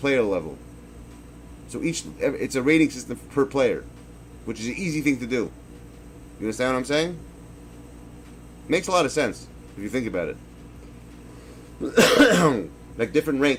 level. So it's a rating system per player, which is an easy thing to do. You understand what I'm saying? Makes a lot of sense if you think about it. Like different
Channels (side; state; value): both; identical; correlation 1.00